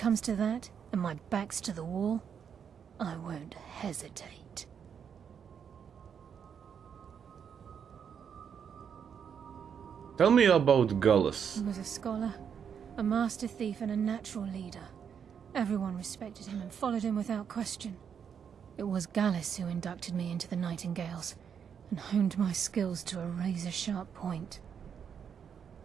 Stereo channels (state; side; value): quieter; left; 7.5 dB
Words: to that, and my back's to the wall, I won't hesitate. Tell me about Gallus. He was a scholar, a master thief, and a natural leader. Everyone respected him and followed him without question. It was Gallus who inducted me into the Nightingales, and honed my skills to a razor-sharp point.